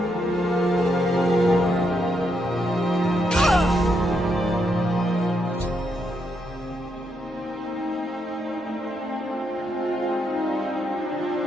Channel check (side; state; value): both; normal; correlation 0.79